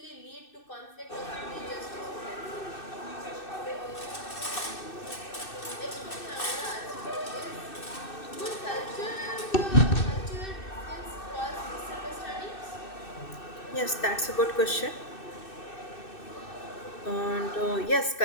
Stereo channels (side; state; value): right; late; 2.6 ms